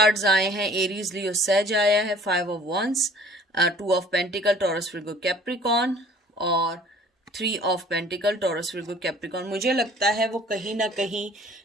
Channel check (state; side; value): normal; both; correlation 0.51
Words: आए हैं, एरीज, लियो, सेज आया है, 5 of wands, 2 of pentacle, Taurus, Virgo, Capricorn, और 3 of pentacle, Taurus, Virgo, Capricorn. मुझे लगता है वो कहीं ना कहीं